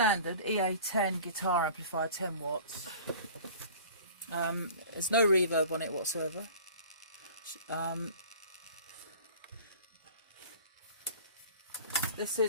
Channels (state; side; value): inverted; both; correlation -0.44